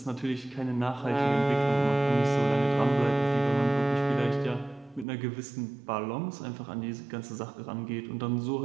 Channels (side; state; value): left; drops out; at 5.1 s